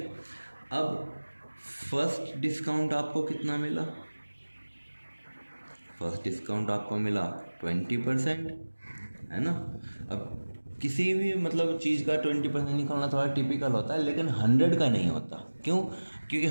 अब फर्स्ट डिस्काउंट आपको कितना मिला, फर्स्ट डिस्काउंट आपको मिला 20%, है ना। अब किसी भी मतलब चीज़ का 20% निकालना थोड़ा टिपिकल होता है, लेकिन 100 का नहीं होता। क्यों? क्योंकि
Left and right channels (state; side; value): inverted; both; correlation -1.00